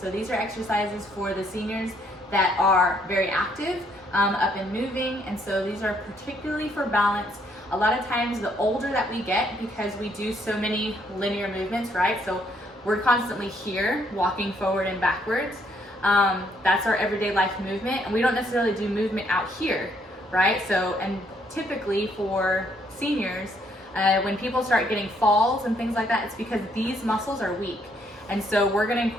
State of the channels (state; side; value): normal; both; correlation 0.69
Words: these are exercises for the seniors that are very active, up and moving. And so these are particularly for balance. A lot of times the older that we get, because we do so many linear movements, right? So we're constantly here, walking forward and backwards. That's our everyday life movement. And we don't necessarily do movement out here, right? So, and typically for seniors, when people start getting falls and things like that, it's because these muscles are weak. And so we're going to